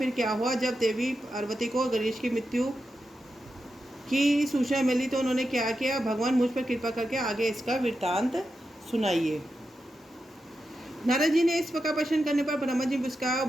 क्या हुआ? जब देवी पार्वती को गणेश की मृत्यु की सूचना मिली तो उन्होंने क्या किया? भगवान मुझ पर कृपा करके आगे इसका वृत्तांत सुनाइए। नारद जी ने इस प्रकार प्रश्न करने पर ब्रह्मा जी मुस्कुराए,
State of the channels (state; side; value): normal; both; correlation 0.88